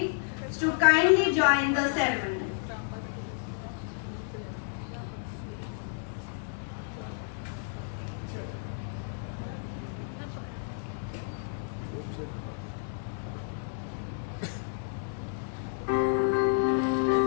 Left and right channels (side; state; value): right; silent; digital silence